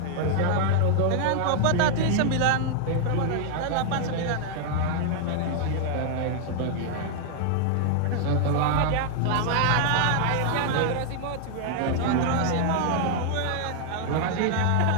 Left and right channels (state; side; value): different; both; correlation 0.00